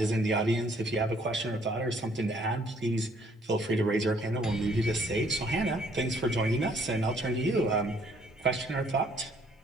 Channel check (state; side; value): normal; both; correlation 0.63